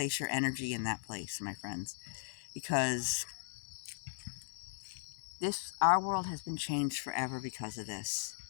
your energy in that place, my friends, because our world has been changed forever because of this.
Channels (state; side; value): silent; right; 53 dB below the other